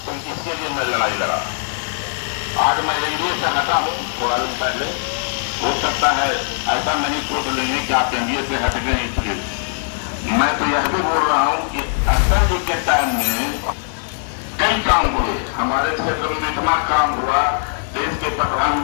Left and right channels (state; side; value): silent; right; digital silence